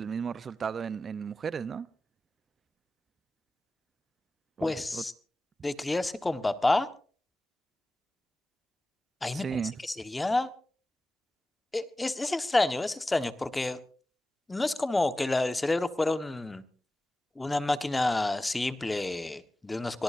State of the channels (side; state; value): both; normal; correlation 0.95